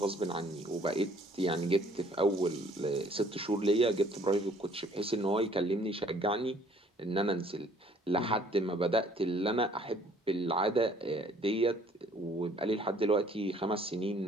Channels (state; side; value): normal; both; correlation 0.58